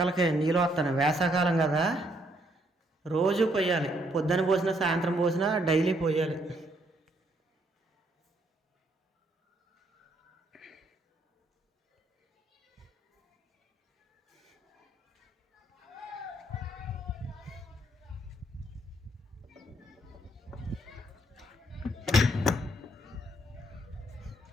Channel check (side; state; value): both; normal; correlation 0.71